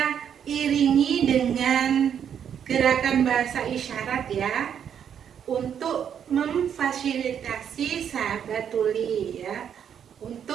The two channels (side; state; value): left; quieter; 8.5 dB